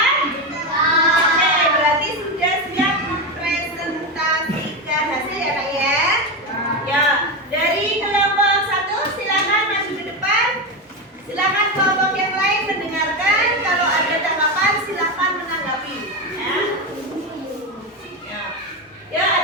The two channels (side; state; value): both; normal; correlation 0.14